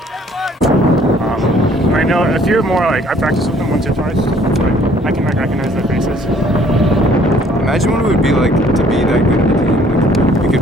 I know a few more, like, I practiced with them once or twice. Like, I can like recognize their faces. Imagine what it would be like to be that good of a team. Like, you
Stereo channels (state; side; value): normal; both; correlation 0.59